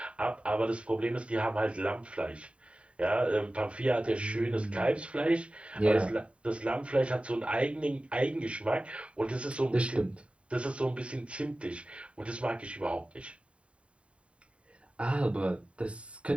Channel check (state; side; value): late; left; 0.061 ms